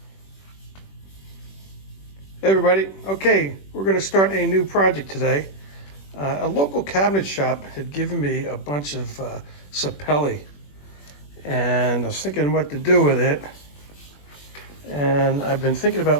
Hey everybody. Okay, we're going to start a new project today. A local cabinet shop had given me a bunch of sapele, and I was thinking what to do with it. And I've been thinking about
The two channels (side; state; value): right; late; 21 ms